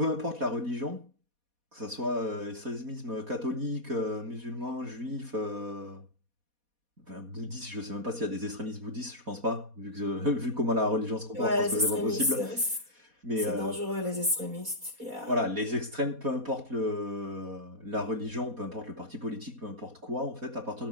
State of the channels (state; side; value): late; left; 4.2 ms